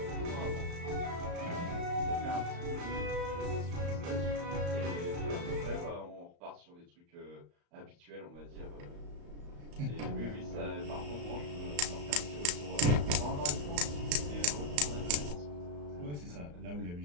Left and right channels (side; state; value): left; late; 34 ms